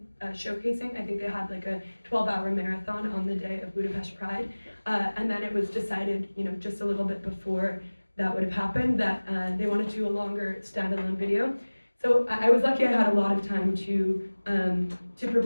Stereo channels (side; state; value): both; inverted; correlation -1.00